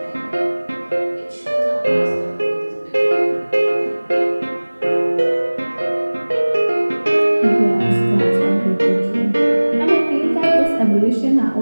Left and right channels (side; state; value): both; inverted; correlation -1.00